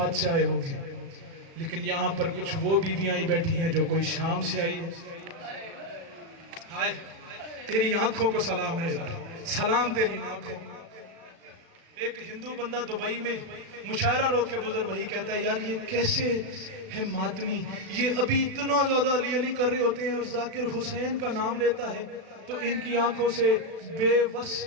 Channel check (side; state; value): left; late; 36 ms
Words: سے آئے ہو گے, لیکن یہاں پر کچھ وہ بیویاں ہی بیٹھی ہیں جو کوئی شام سے آئی ہے. ہائے تیری آنکھوں کو سلام ہے یار, سلام تیری آنکھوں. ایک ہندو بندہ دبئی میں مشاعرہ روک کے بزرگ بھائی کہتا ہے یار یہ کیسے ہے ماتمی, یہ ابھی اتنا زیادہ علی علی کر رہے ہوتے ہیں اور ذاکر حسین کا نام لیتا ہے تو ان کی آنکھوں سے بے بس